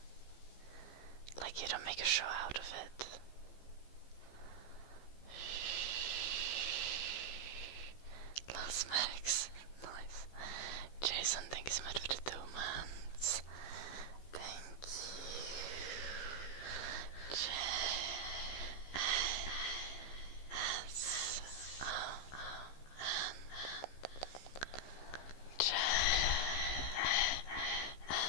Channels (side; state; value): right; late; 15 ms